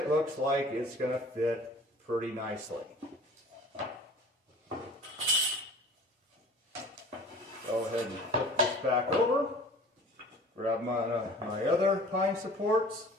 looks like it's going to fit pretty nicely. Go ahead and flip this back over. Grab my other pine supports.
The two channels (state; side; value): normal; both; correlation 0.44